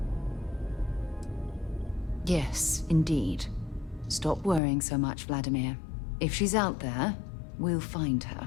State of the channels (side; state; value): right; drops out; at 4.6 s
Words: Yes, indeed. Stop worrying so much, Vladimir. If she's out there, we'll find